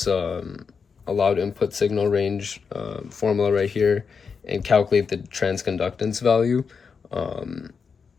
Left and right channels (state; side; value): quieter; right; 5.7 dB